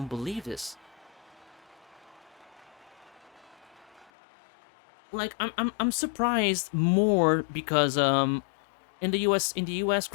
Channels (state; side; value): drops out; right; at 4.1 s